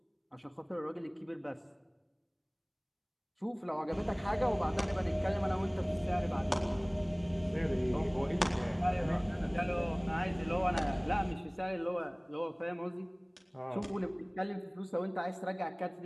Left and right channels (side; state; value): both; identical; correlation 1.00